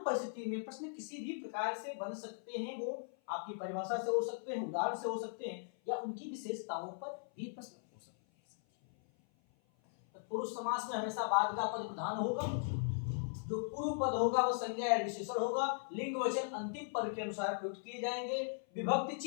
में प्रश्न किसी भी प्रकार से बन सकते हैं, वो आपकी परिभाषा से हो सकते हैं, उदाहरण से हो सकते हैं, या उनकी विशेषताओं पर भी प्रश्न हो सकते हैं। तत्पुरुष समास में हमेशा बाद का पद प्रधान होगा, जो पूर्व पद होगा वो संज्ञा या विशेषण होगा, लिंग वचन अंतिम पद के अनुसार प्रयुक्त किए जाएंगे, विभक्ति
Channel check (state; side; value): silent; right; 52 dB below the other